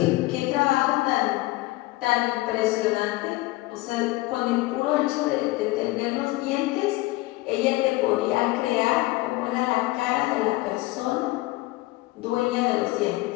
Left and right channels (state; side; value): quieter; right; 20.1 dB